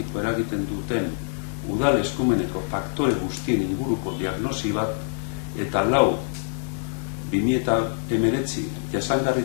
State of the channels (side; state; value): right; silent; digital silence